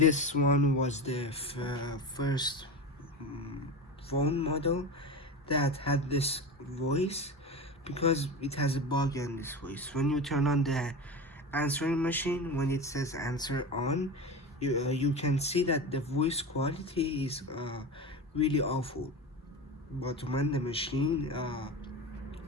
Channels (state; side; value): normal; both; correlation 0.25